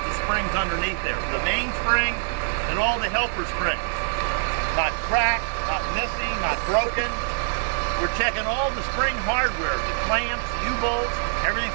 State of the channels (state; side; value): silent; left; 56 dB below the other